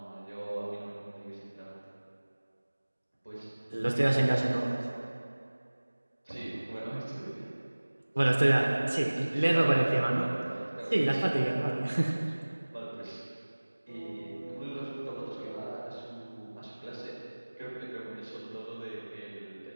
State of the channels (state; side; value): inverted; both; correlation -1.00